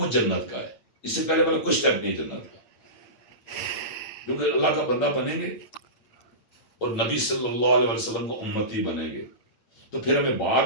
جنت کا ہے. اس سے پہلے کوئی سٹیپ نہیں جنت کا، کیونکہ اللہ کا بندہ بنیں گے اور نبی صلی اللہ علیہ وسلم کو امتی بنیں گے تو پھر ہمیں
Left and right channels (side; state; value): right; late; 8.7 ms